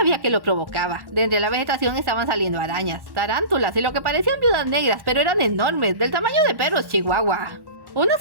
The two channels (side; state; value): left; late; 1.1 ms